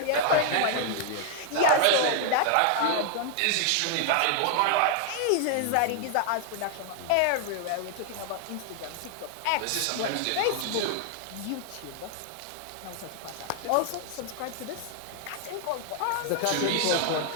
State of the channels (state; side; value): different; both; correlation 0.00